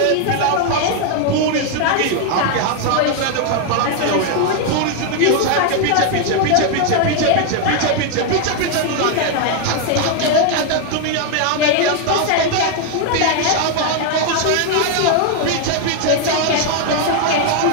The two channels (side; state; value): both; different; correlation 0.00